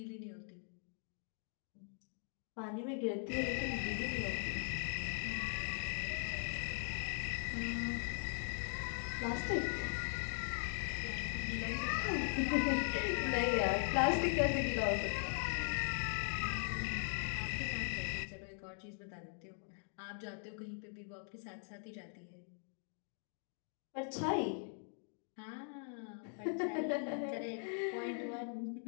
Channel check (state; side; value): silent; right; 51 dB below the other